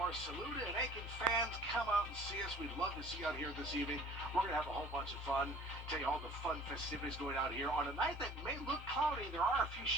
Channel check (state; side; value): normal; both; correlation 0.50